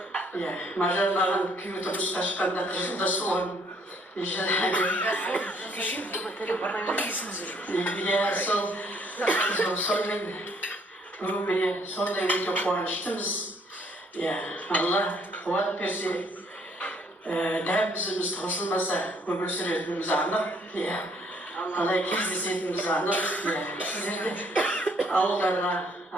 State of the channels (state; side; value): normal; both; correlation 0.65